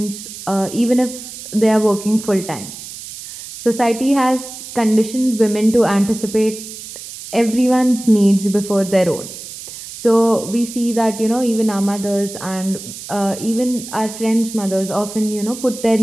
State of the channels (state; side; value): noise; right; hiss, 12 dB below the sound